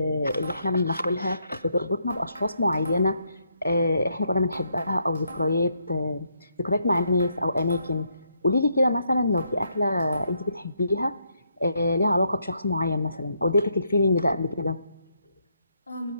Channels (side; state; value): both; inverted; correlation -0.76